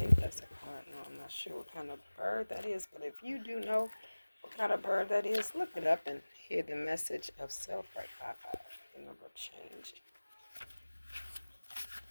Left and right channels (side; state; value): both; inverted; correlation -1.00